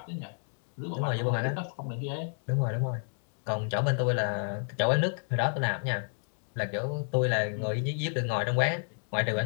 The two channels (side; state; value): right; silent; 57 dB below the other